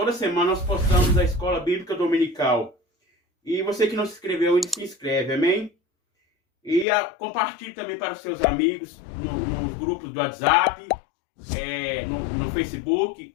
semana nós postamos a Escola Bíblica Dominical. E você que não se inscreveu ainda, se inscreve, amém? E compartilhe também para os seus amigos, nos grupos do WhatsApp, no Facebook,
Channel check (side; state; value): right; drops out; at 6.9 s